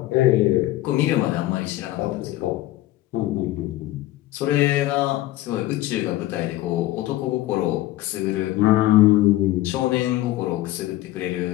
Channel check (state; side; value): quieter; right; 15.9 dB